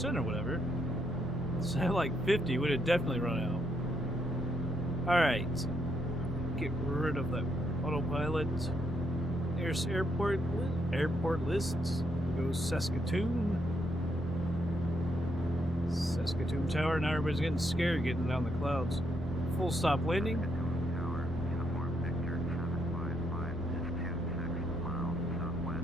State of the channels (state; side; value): normal; both; correlation 0.77